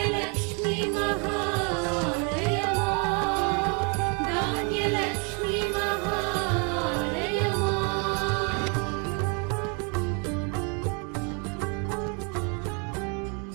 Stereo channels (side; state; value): left; quieter; 35.7 dB